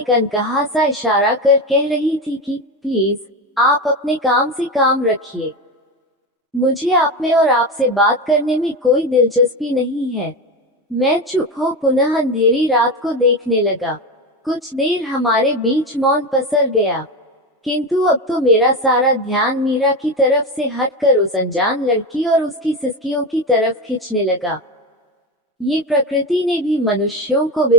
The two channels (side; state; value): both; normal; correlation 0.19